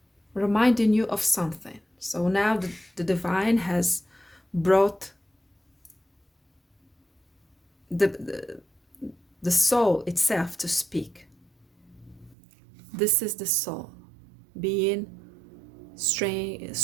reminding you of something. So now the divine has brought the soul itself to speak. This is the soul being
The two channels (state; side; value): drops out; left; at 12.4 s